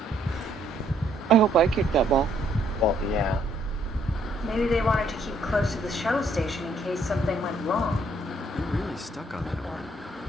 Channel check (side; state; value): both; normal; correlation 0.68